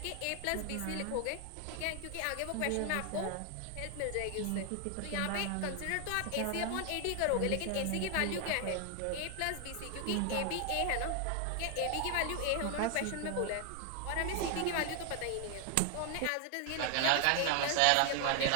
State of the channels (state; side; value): different; both; correlation 0.00